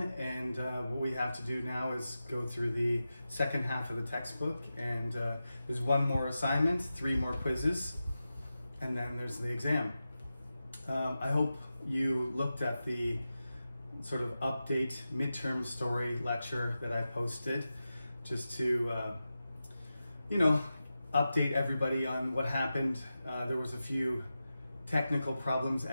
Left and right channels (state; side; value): inverted; both; correlation -0.92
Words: and what we have to do now is go through the second half of the textbook, and there's one more assignment, 3 more quizzes, and then there's the exam. I hope you looked at the sort of update midterm story lecture that I posted just to update everybody on what happened. There was a few technical problems